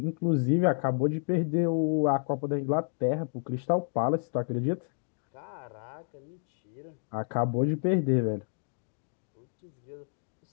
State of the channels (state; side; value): silent; right; digital silence